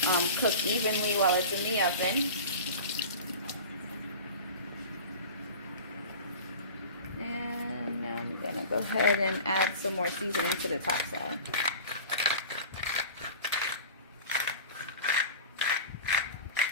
cook evenly while it's in the oven. And now I'm gonna go ahead and add some more seasoning to the top side.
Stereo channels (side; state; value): both; inverted; correlation -0.36